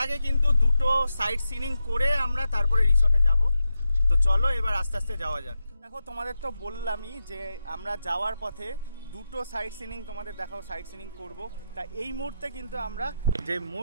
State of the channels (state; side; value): inverted; both; correlation -0.88